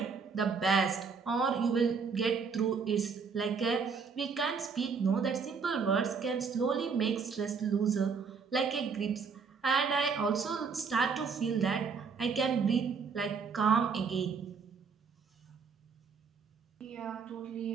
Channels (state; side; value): quieter; left; 5.5 dB